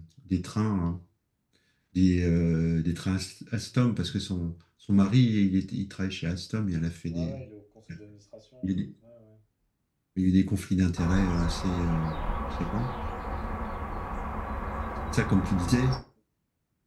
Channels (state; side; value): identical; both; correlation 1.00